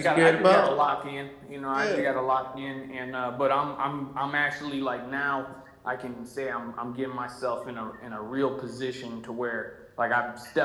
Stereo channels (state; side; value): identical; both; correlation 1.00